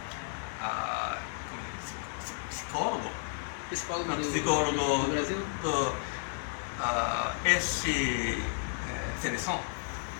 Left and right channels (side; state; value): right; silent; digital silence